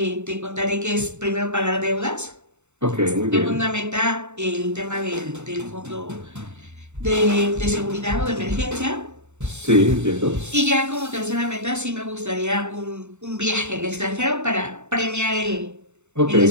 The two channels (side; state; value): left; late; 0.83 ms